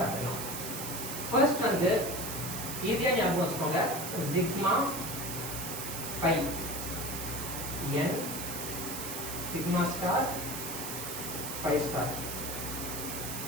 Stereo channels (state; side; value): noise; right; hiss, 5 dB below the sound